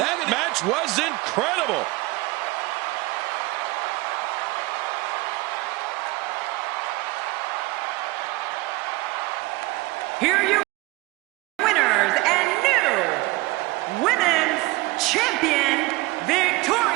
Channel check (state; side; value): quieter; left; 21.9 dB